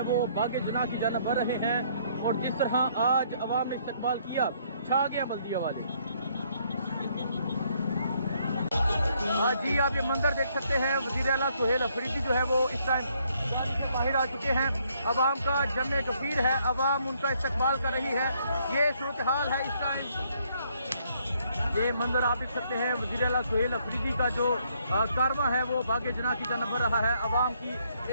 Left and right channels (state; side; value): inverted; both; correlation -0.69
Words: वो बागे जना की जानब बढ़ रहे हैं, और जिस तरह आज अवाम ने इस्तकबाल किया, छा गया बल्दिया वाले। जी आप ये मंदिर देख सकते हैं, वज़ीर आला सुहेल अफरीदी जो है वो इस टाइम बाहर आ चुके हैं। अवाम का जमे गफीर है, अवाम उनका इस्तकबाल कर रही है। ये सूरत हाल है इस टाइम। ये मंदिर आप देख सकते हैं, वज़ीर आला सुहेल अफरीदी का जो कारवां है वो बागे जना की जानब बढ़ रहा है। अवाम की